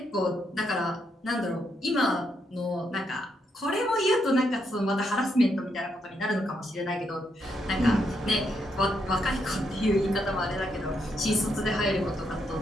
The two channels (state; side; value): normal; both; correlation 0.78